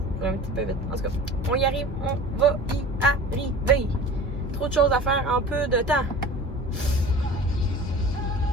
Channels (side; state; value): both; normal; correlation 0.40